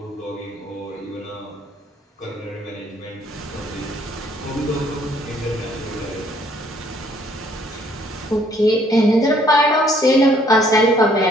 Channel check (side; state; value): both; normal; correlation 0.62